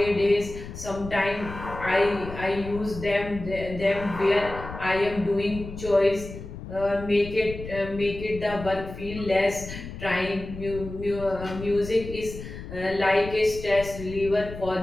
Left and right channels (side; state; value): left; noise; rumble, 11 dB below the sound